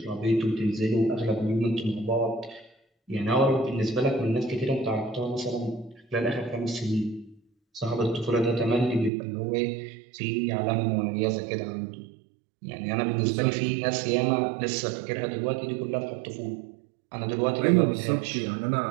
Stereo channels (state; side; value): drops out; left; at 9.1 s